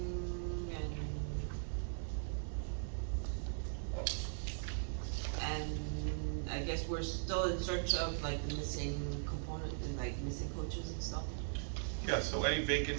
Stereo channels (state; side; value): silent; left; digital silence